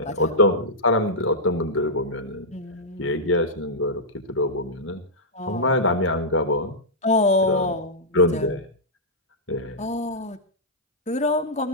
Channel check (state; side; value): normal; both; correlation -0.10